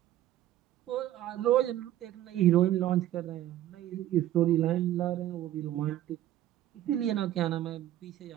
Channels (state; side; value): quieter; left; 13.1 dB